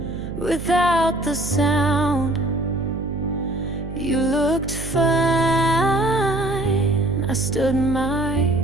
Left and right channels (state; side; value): noise; right; hum, 9 dB below the sound